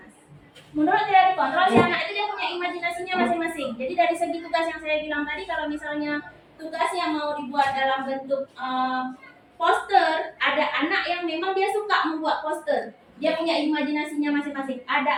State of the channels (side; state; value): both; identical; correlation 1.00